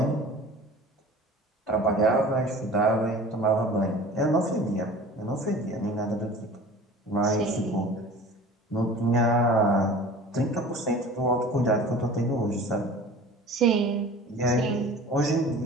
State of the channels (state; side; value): normal; both; correlation 0.41